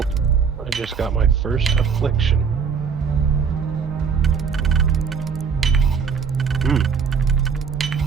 I just got my first affliction.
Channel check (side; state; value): left; quieter; 6.2 dB